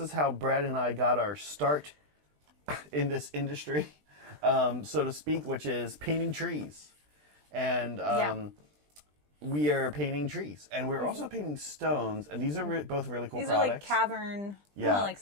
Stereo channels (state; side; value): late; left; 20 ms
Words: how Brad and I got our start in this industry, so to speak, which is painting trees. And we are painting trees, and we're also painting stones. And these are both really cool products. These are like cavern. Yeah. Like,